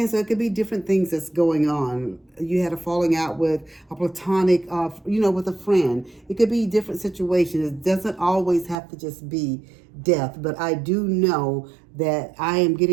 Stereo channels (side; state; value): left; drops out; at 8.8 s